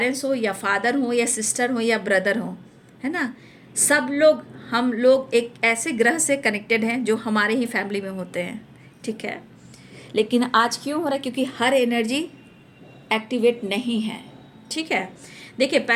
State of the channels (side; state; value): both; identical; correlation 1.00